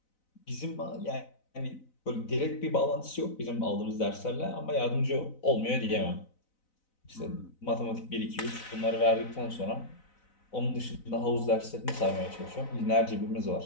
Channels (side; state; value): right; late; 4.0 ms